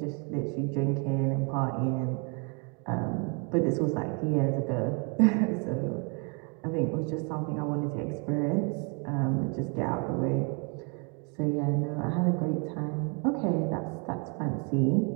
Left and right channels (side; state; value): left; quieter; 35.7 dB